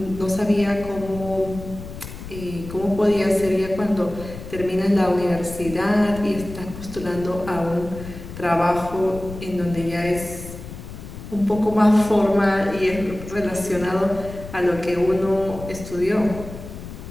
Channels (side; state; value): left; noise; rumble, 12 dB below the sound